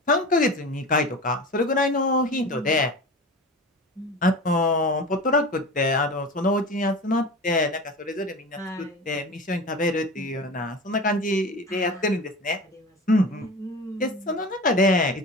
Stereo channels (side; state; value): both; normal; correlation 0.32